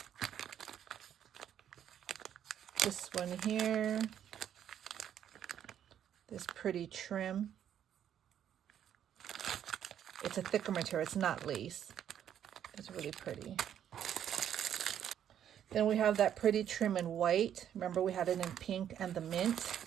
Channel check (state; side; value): quieter; left; 9.8 dB